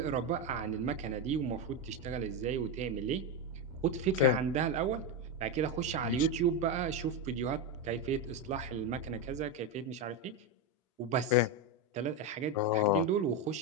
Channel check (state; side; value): normal; both; correlation 0.10